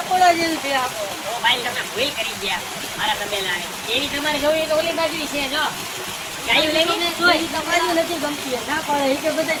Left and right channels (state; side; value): identical; both; correlation 1.00